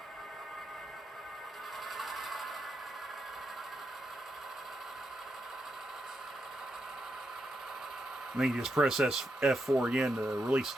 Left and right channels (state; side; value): normal; both; correlation 0.83